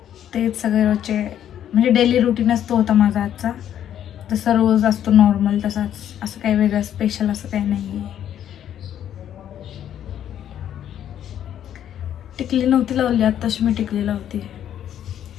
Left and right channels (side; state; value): right; quieter; 10.4 dB